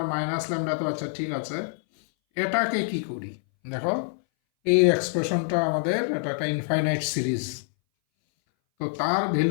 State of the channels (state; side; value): silent; right; 60 dB below the other